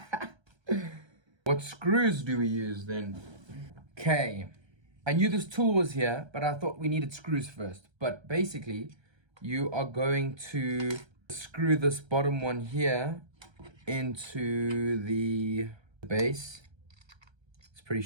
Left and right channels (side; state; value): left; late; 1.3 ms